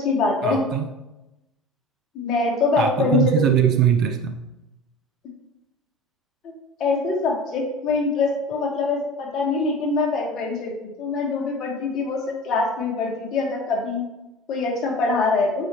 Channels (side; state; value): both; normal; correlation 0.36